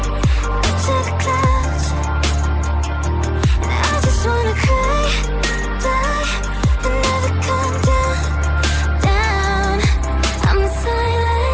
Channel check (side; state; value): both; identical; correlation 1.00